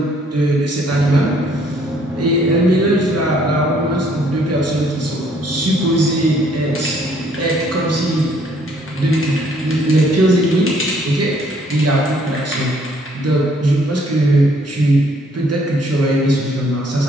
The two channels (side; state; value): both; normal; correlation 0.64